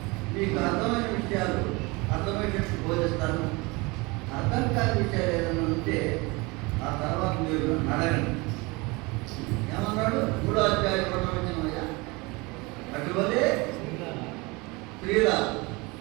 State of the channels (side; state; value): left; quieter; 25.4 dB